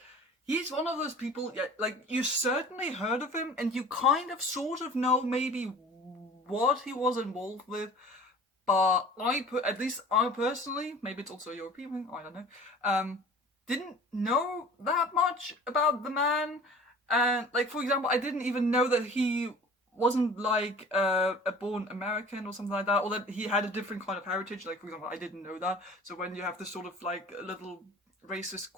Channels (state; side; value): normal; both; correlation 0.44